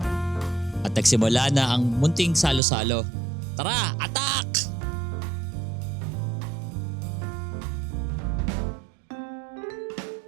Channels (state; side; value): drops out; left; at 2.6 s